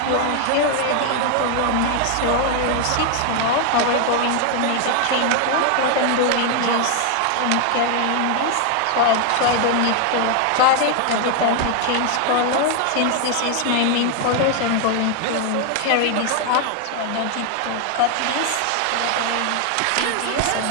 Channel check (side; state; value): both; different; correlation 0.00